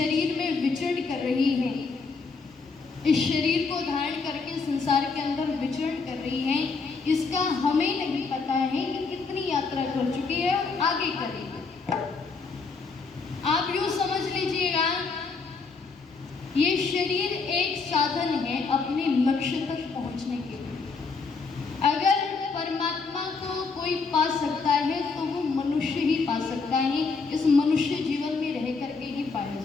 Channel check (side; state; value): right; quieter; 4.6 dB